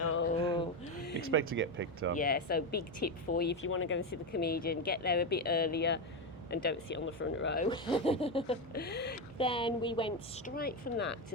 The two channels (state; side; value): normal; both; correlation 0.11